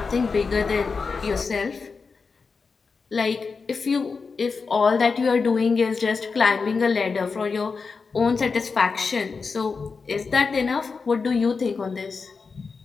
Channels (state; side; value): quieter; right; 4.8 dB